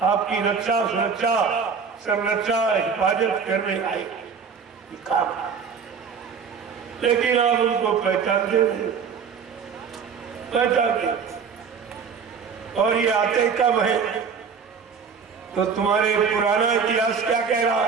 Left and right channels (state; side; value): quieter; left; 6.1 dB